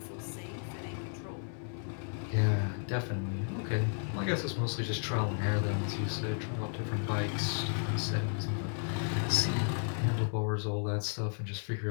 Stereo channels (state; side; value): silent; right; 55 dB below the other